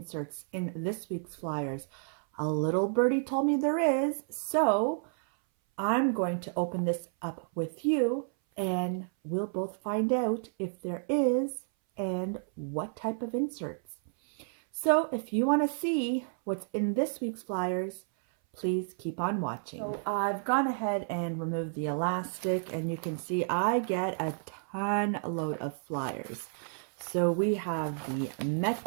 in this week's flyers. A little birdie told me there is, so I'm going to open this up with you and we'll both find out if there is and what type of inserts. So if you want to see what's in this week's flyers, please keep on watching. So I've gone ahead and removed the elastic, and you can see I get a ton load of flyers. So we have the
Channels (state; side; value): silent; left; 57 dB below the other